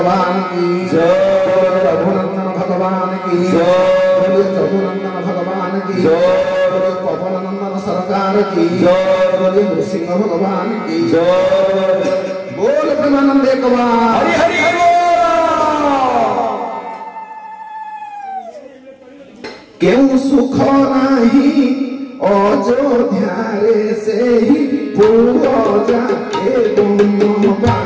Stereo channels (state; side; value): identical; both; correlation 1.00